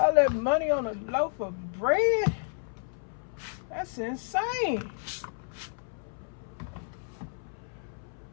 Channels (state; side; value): silent; right; 57 dB below the other